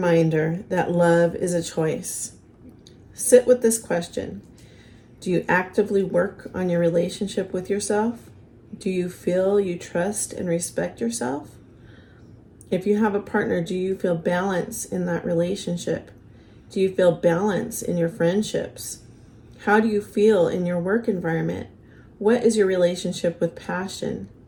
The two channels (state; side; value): identical; both; correlation 1.00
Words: that love is a choice. Sit with this question. Do you actively work on your relationship with yourself? Do you feel you trust and respect yourself? If you have a partner, do you feel balance in that relationship? Do you feel balance in your friendships? How do you feel in your work environment? What is your relationship with passion?